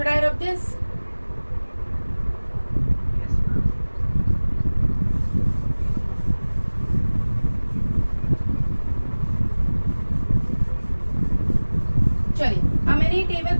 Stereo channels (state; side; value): inverted; both; correlation -1.00